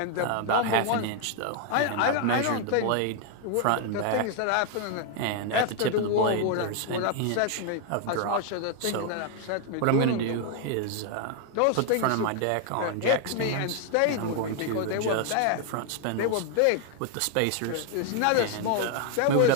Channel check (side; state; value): both; different; correlation 0.00